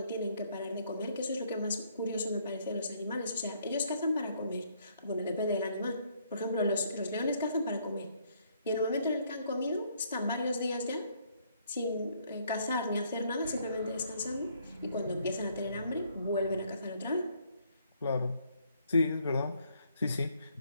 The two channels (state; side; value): inverted; both; correlation -0.68